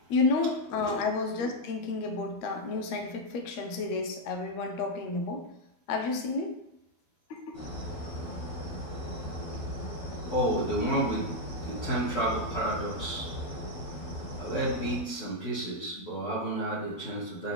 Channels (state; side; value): late; right; 12 ms